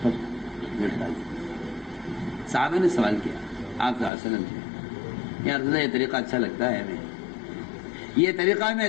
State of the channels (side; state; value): right; drops out; at 4.1 s